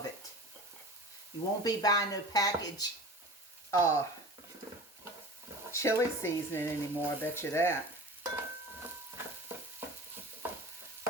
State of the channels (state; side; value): normal; both; correlation 0.36